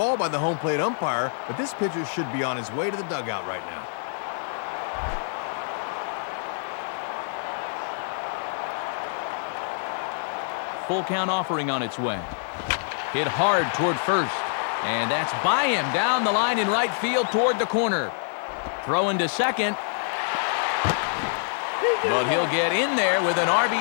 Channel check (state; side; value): silent; right; digital silence